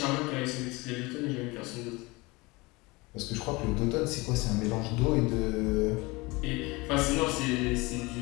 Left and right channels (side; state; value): right; quieter; 23.9 dB